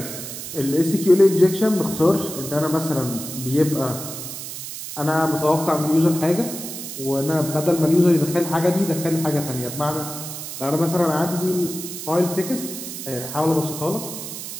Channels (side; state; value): right; noise; hiss, 9 dB below the sound